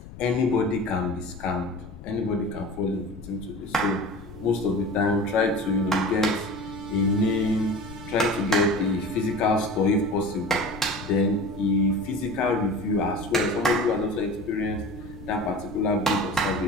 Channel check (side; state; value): left; noise; rumble, 15 dB below the sound